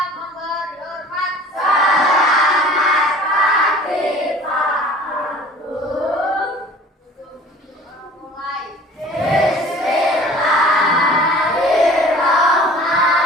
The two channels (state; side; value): normal; both; correlation 0.46